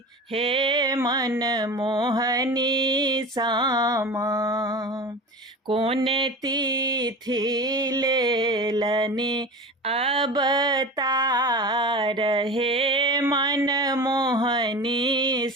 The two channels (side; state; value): both; normal; correlation 0.32